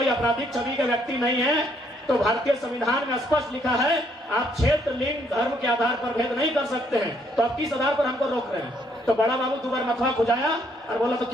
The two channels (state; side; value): normal; both; correlation 0.69